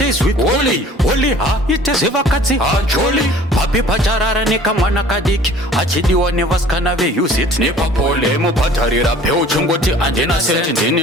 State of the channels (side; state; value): both; normal; correlation 0.49